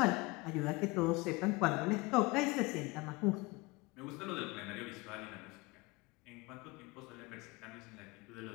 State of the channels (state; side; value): quieter; right; 23.9 dB